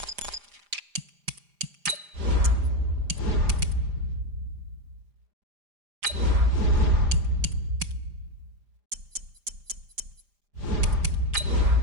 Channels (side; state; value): left; late; 4.9 ms